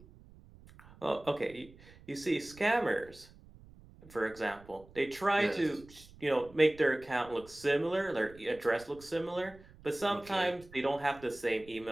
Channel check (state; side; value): noise; right; rumble, 22 dB below the sound